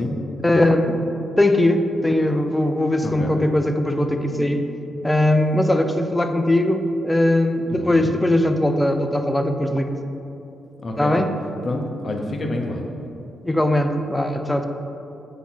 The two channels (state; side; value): normal; both; correlation 0.89